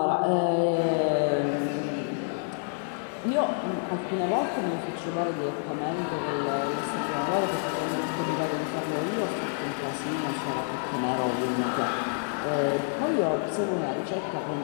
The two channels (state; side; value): silent; right; digital silence